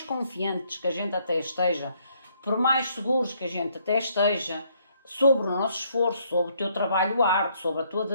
confiantes que a gente até esteja, por mais seguros que a gente até esteja, sobre o nosso esforço, sobre o teu trabalho árduo, sobre a tua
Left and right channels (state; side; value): inverted; both; correlation -0.69